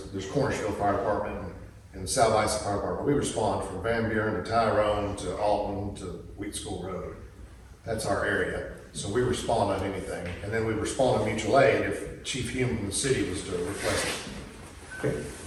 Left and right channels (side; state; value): both; identical; correlation 1.00